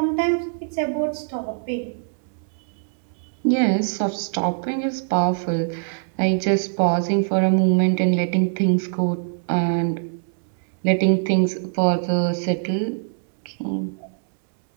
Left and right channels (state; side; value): silent; left; 63 dB below the other